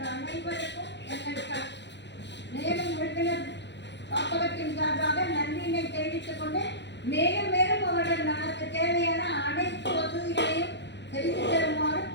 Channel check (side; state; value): right; late; 0.51 ms